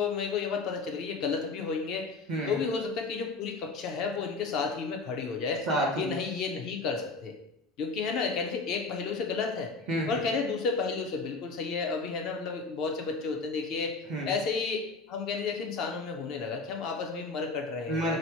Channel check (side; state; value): right; quieter; 3.6 dB